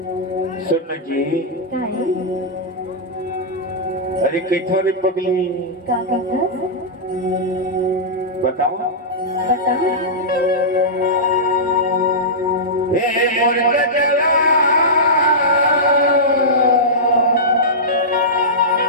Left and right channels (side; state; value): both; normal; correlation -0.15